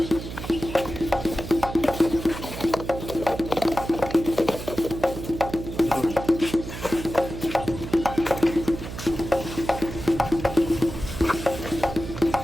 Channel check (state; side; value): noise; right; hum, 9 dB below the sound